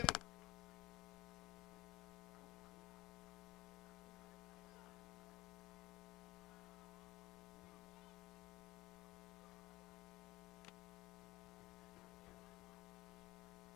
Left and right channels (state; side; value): quieter; right; 19.0 dB